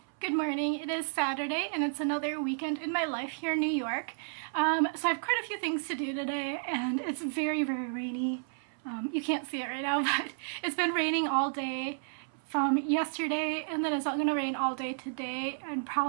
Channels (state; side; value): silent; left; 57 dB below the other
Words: Good morning. It is Saturday and it's another weekend in my life here in New York. So I have quite a few things to do today and it's very, very rainy. You can't see it right now, but it's been raining all day from yesterday, and then it's going to rain all day today and